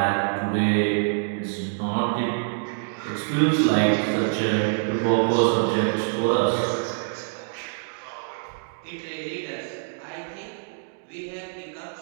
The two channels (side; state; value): left; silent; digital silence